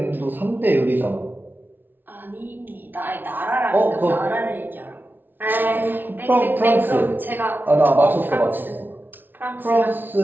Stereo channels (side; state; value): left; late; 0.093 ms